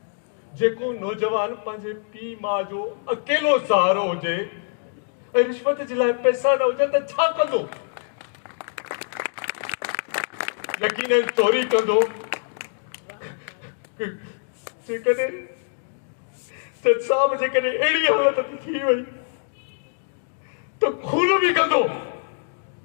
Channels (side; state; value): right; silent; digital silence